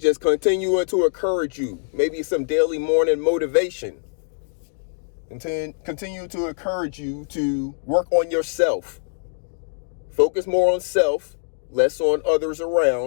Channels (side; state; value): right; silent; digital silence